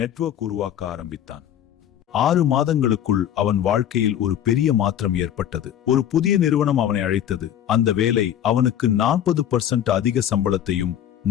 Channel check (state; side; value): quieter; right; 10.5 dB